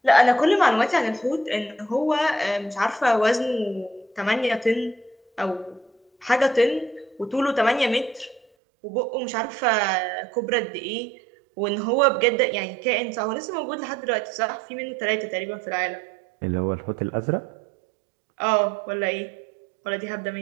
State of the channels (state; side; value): drops out; left; at 8.5 s